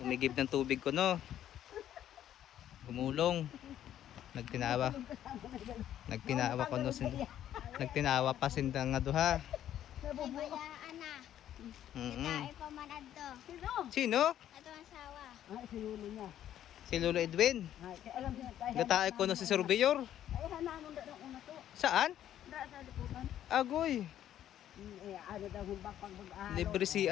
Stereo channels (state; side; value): quieter; right; 11.3 dB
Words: ng tubig ko, no? Gumulong. Nagtinawa. Nagtinawa ko, no? Nagtinawa pa sindang nga duha. Bayaan na. Tae pa man adto. Sino? Sino? Ato ang sawa. Ay, si Lolo niya. Si Lolo Edwin. Ay, kaya alam niya tayo. Gatae ko no si surveyor. Ay, hanamon daw ng una to. Saan? Da sa liputan. Agoy. Eh, ano daw humbak pag mag-ahalo. Libre